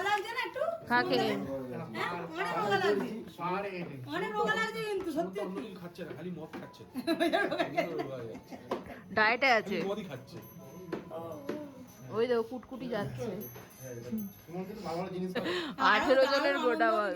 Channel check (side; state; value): both; identical; correlation 1.00